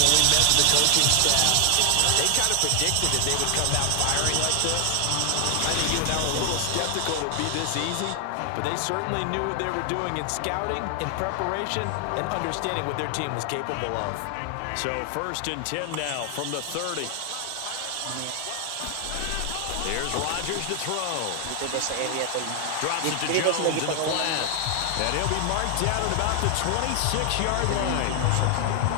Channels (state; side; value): different; both; correlation 0.00